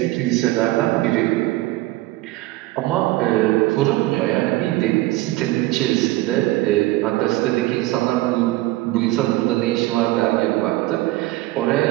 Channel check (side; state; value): left; quieter; 18.4 dB